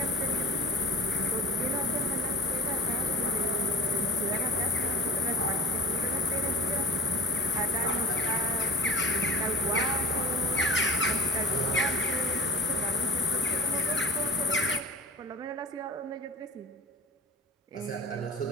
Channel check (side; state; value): both; normal; correlation 0.40